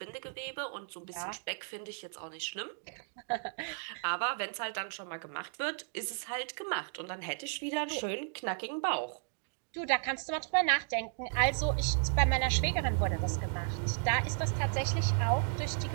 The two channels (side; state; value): left; silent; digital silence